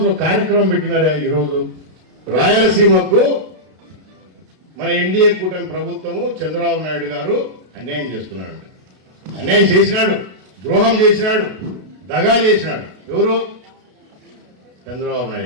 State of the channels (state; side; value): late; left; 32 ms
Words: కార్యక్రమం పెట్టినారా? ఈరోజు రాయలసీమకు మన ఎన్డీఏ కూటమి ప్రభుత్వము చంద్రబాబు నాయుడు గారు అన్యాయం చేస్తున్నాడు. అన్యాయం చేసినాడు, ద్రోహం చేసినాడు, దగా చేసినాడు. ఎవరు? చంద్రబాబు